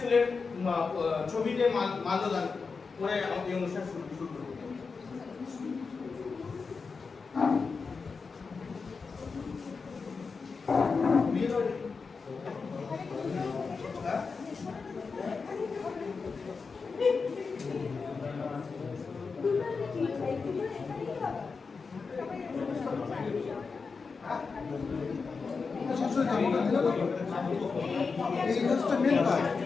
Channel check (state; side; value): quieter; right; 4.8 dB